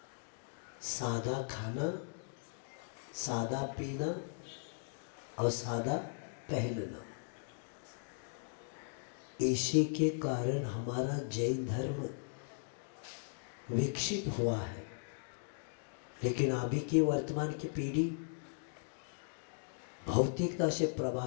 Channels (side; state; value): right; silent; digital silence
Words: सादा खाना, सादा पीना और सादा पहनना, इसी के कारण हमारा जैन धर्म विकसित हुआ है। लेकिन अभी की वर्तमान की पीढ़ी भौतिकता से